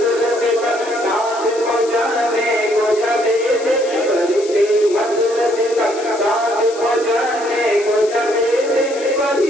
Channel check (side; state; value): left; noise; hiss, 16 dB below the sound